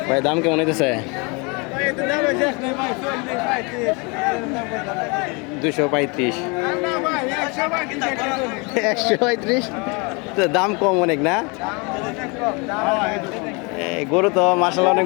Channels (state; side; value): quieter; right; 30.4 dB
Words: ভাই দাম কেমন হইতেছে? 235। 135 তো দাম কম অনেক না? গরু তো মাশাআল্লাহ